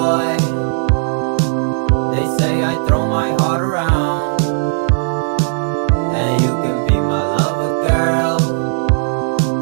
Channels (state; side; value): silent; left; 61 dB below the other